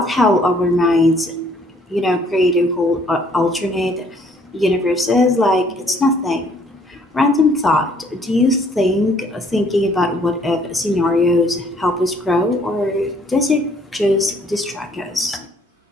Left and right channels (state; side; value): normal; both; correlation 0.62